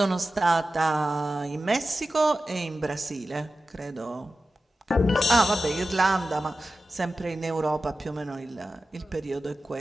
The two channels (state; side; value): normal; both; correlation 0.94